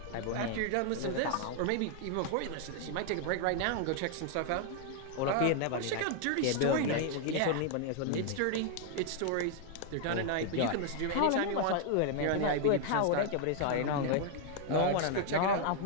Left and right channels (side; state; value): both; different; correlation 0.00